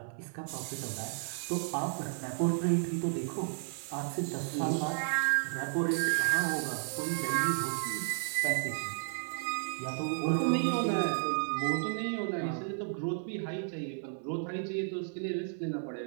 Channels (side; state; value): left; silent; 56 dB below the other